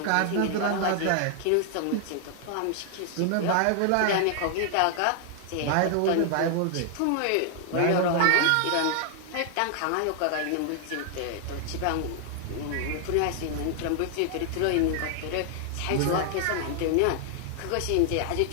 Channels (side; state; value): both; different; correlation 0.00